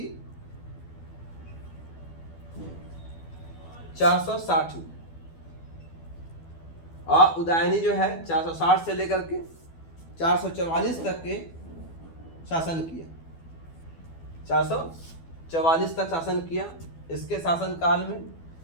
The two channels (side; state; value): right; late; 12 ms